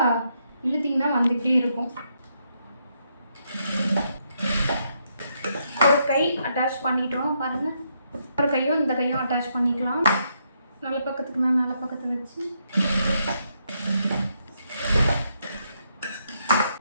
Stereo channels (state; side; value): inverted; both; correlation -0.77